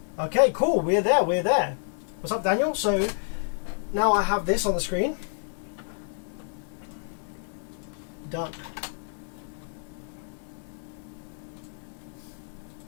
Okay, cool. We're there. What's up, Daniel? So now I have this on the screen. Done.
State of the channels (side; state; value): right; silent; 59 dB below the other